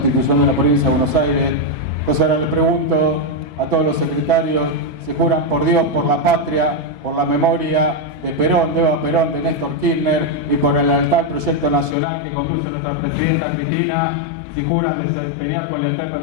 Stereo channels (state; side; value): drops out; right; at 12.0 s